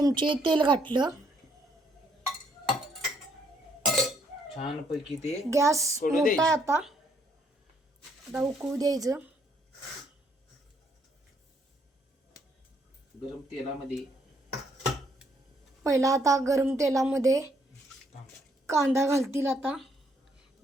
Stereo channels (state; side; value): normal; both; correlation 0.70